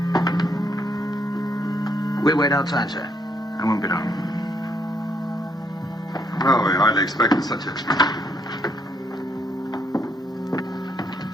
We wait outside, sir. I won't be long. Well, we hardly expected such a...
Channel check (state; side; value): normal; both; correlation 0.73